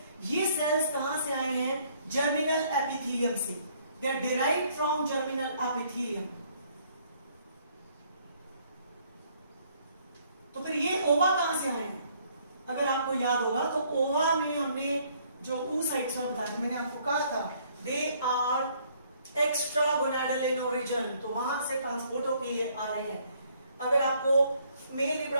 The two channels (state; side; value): inverted; both; correlation -0.64